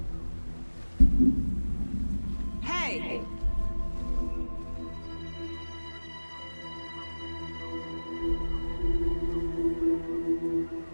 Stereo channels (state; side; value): inverted; both; correlation -1.00